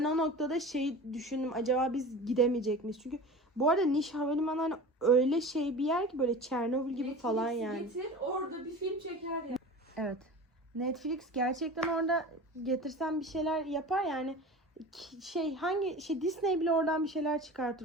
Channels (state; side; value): normal; both; correlation 0.35